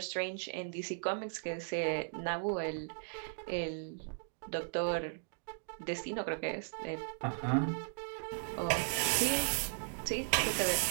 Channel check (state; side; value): silent; left; digital silence